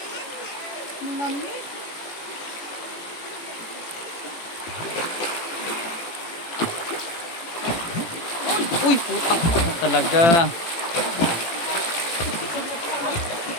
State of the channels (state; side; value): late; right; 18 ms